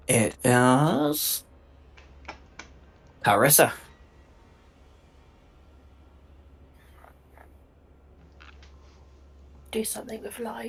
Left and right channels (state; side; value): identical; both; correlation 1.00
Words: It is Carissa. Do something with